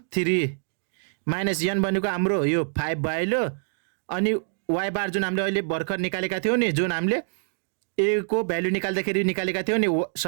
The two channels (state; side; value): silent; left; digital silence